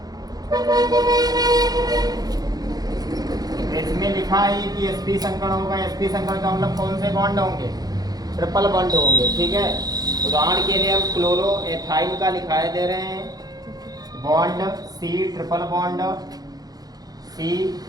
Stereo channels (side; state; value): left; late; 0.19 ms